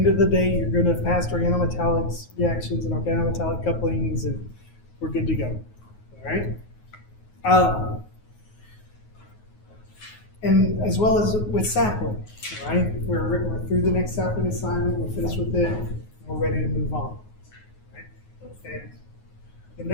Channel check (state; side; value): late; right; 9.5 ms